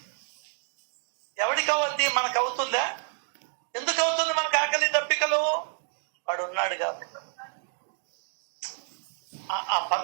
ఎవరికి అవద్ది? మనకు అవుతుందా? ఎందుకు అవుతుంది మనకు ఆకలి దప్పికలు? వాడు ఉన్నాడు కాబట్టి. ఆ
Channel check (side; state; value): left; silent; 59 dB below the other